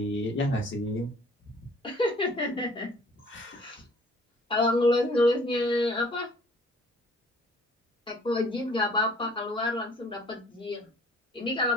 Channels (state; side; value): normal; both; correlation 0.55